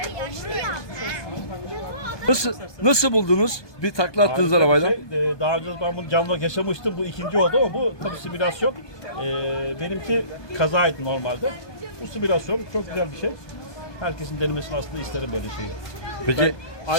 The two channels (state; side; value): late; right; 1.2 ms